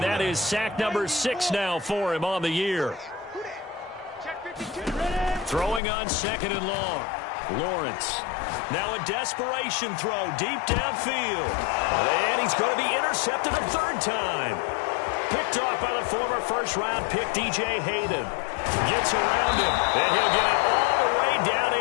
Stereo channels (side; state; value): right; drops out; at 5.8 s